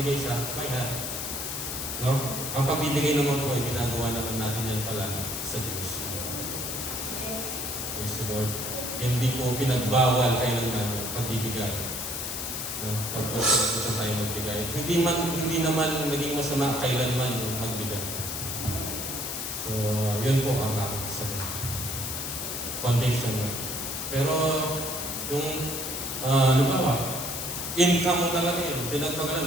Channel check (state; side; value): noise; left; hiss, 4 dB below the sound